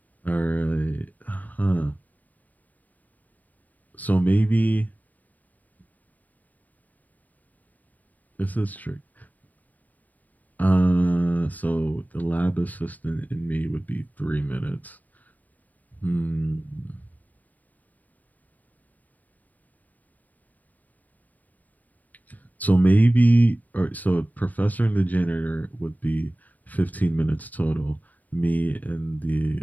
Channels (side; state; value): right; late; 0.079 ms